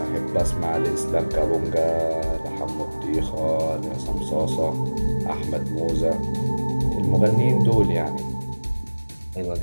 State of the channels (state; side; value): inverted; both; correlation -1.00